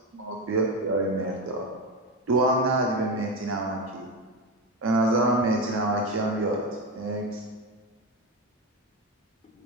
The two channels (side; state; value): both; normal; correlation 0.16